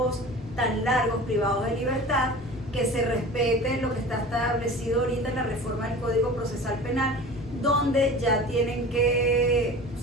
tan largos privados de libertad, que se respete lo que está establecido ahorita en la reforma del Código Procesal Penal, donde ya tienen que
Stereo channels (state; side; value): normal; both; correlation 0.38